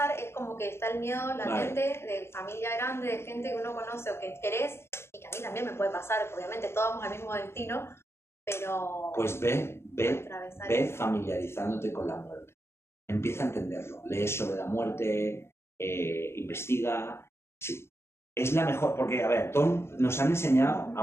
es como que está el miedo latente de familia grande, de gente que uno conoce o que querés, y que a mí también me puede pasar, obviamente todos vamos al mismo destino, pero... Pues ve familiarizándote con la muerte. Empieza a entenderlo. Lees sobre la muerte, investiga. Sí, es la mejor, porque, a ver, nos han enseñado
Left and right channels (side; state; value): right; late; 0.12 ms